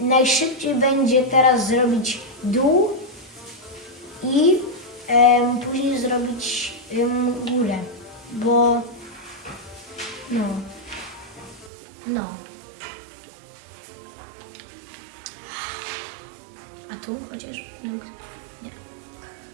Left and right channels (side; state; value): left; drops out; at 11.7 s